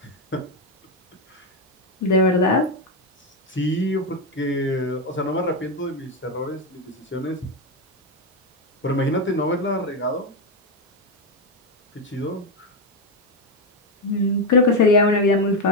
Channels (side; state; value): both; normal; correlation 0.08